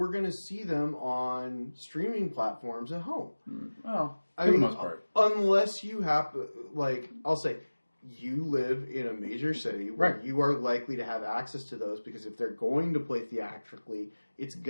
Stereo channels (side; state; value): both; inverted; correlation -1.00